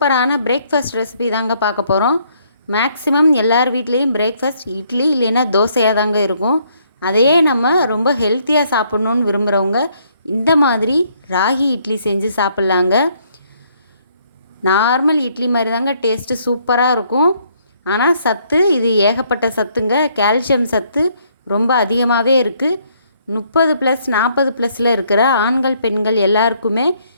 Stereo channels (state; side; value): inverted; both; correlation -0.68